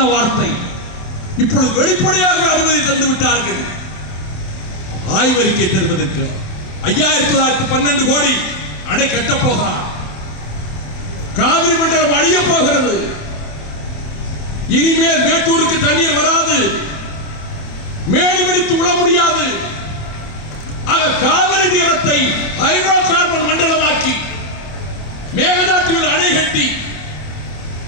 வார்த்தை இப்பொழுது வெளிப்படையாக அனுமதி தந்து விட்டார்கள். ஆய்வறிக்கை தருவதற்கு 5912 கோடி அணை கட்டப் போகிறார். காவிரி மண்டலம் அழிய போகிறது. இனிமேல் மேட்டூருக்கு தண்ணீர் வராது, மேடி பிடித்து உள்ள முடியாது. ஆக காவிரி தீரத்தை ஹைட்ரோ கார்பன் மண்டலமாக்கி மேகதாட்டுவில் அணை கட்டி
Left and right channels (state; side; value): late; right; 27 ms